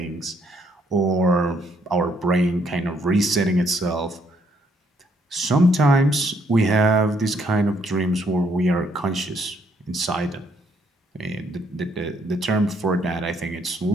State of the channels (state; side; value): normal; both; correlation 0.70